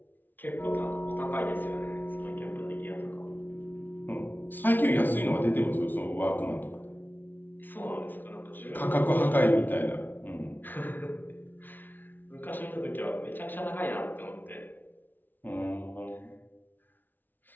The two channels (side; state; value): right; late; 0.088 ms